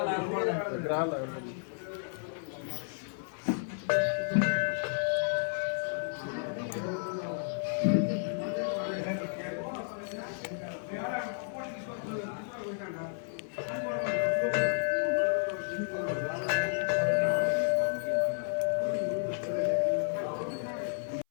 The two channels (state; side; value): silent; right; 56 dB below the other